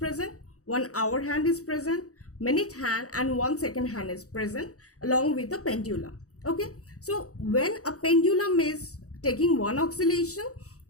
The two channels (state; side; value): late; right; 0.65 ms